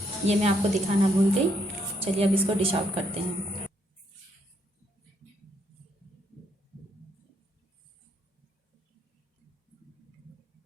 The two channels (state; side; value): normal; both; correlation 0.73